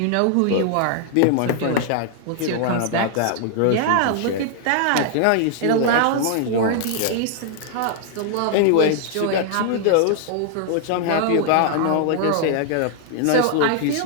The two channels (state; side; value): different; both; correlation 0.00